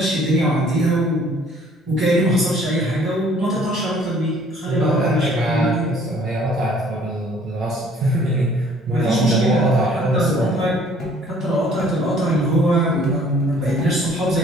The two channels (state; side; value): normal; both; correlation 0.57